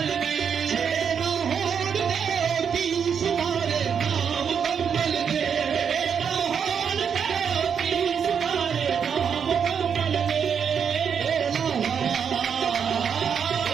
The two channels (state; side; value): quieter; left; 7.2 dB